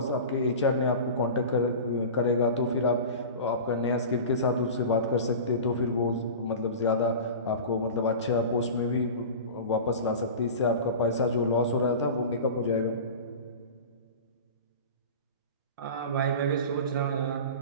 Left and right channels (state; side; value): inverted; both; correlation -0.32